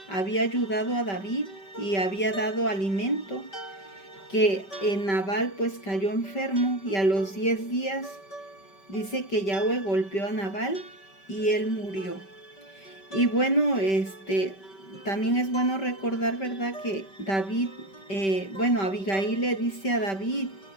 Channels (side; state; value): right; late; 5.2 ms